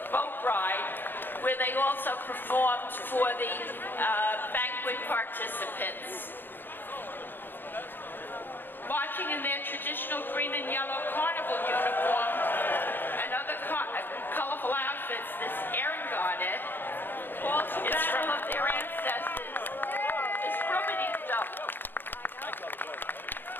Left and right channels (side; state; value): right; late; 0.096 ms